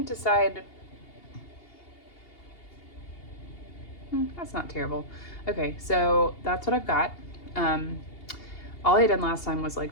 decide. That's not terrible. Okay, so that's what I've got. All I had done last time was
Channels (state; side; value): late; right; 2.8 ms